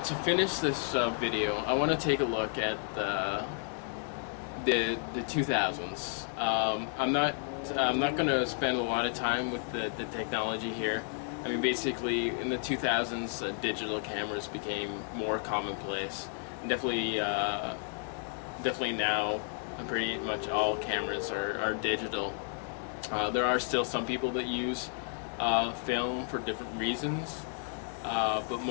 to finish this video, I want to take a look at the 2000s. I'm not going to spend a lot of time with the technology here. I mean, basically, in the 2000s, digital cameras became more commonplace. And definitely now, pretty much all cameras are digital. There are still some people that use film for different reasons. But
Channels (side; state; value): right; silent; 56 dB below the other